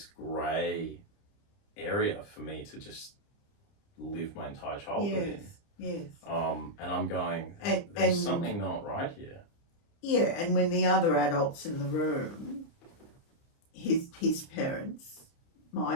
grey area for me to just live my entire childhood in. Yes. And I'm going, there's something not right here. Yeah, and when the other adults in the room, his parents,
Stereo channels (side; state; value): right; late; 29 ms